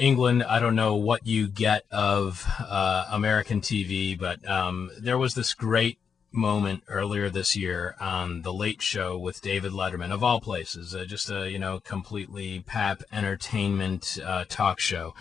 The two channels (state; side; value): quieter; right; 6.6 dB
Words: I don't know what you get of American TV, but there was this great moment earlier this year on The Late Show with David Letterman, of all places, just a, completely pap entertainment talk show,